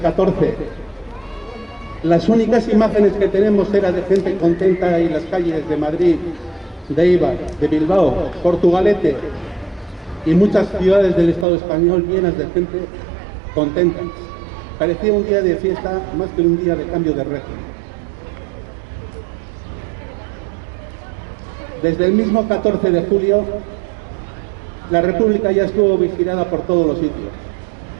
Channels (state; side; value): drops out; left; at 11.5 s